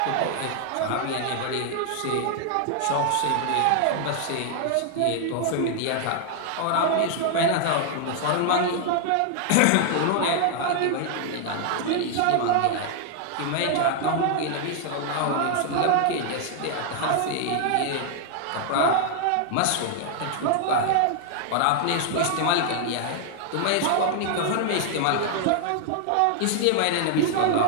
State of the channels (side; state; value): both; different; correlation 0.00